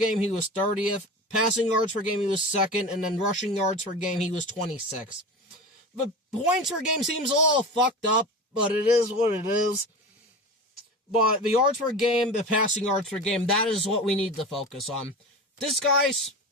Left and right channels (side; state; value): both; normal; correlation 0.30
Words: he was 30th. Passing yards per game, he was second. And then rushing yards per game, he was 26th. But points per game seems a little fucked up, but it is what it is. But the yards per game, the passing yards per game, that is what we need to focus on. This guy